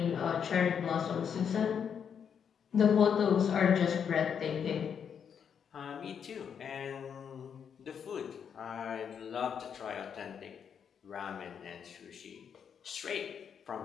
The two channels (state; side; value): quieter; right; 7.5 dB